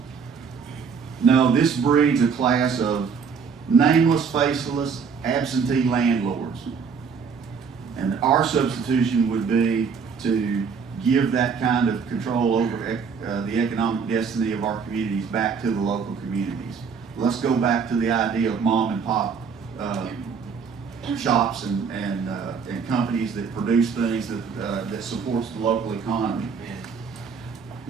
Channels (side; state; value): left; quieter; 6.0 dB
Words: No, this breeds a class of nameless, faceless, absentee landlords. And our substitution would be to give that kind of control over the economic destiny of our communities back to the local communities. Let's go back to the idea of mom and pop shops and companies that produce things that supports the local economy.